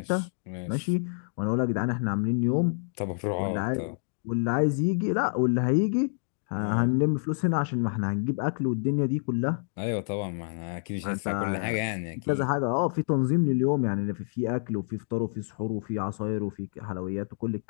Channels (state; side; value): silent; right; digital silence